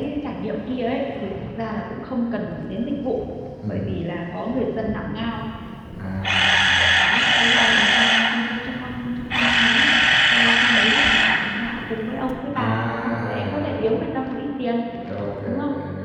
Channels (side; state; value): both; identical; correlation 1.00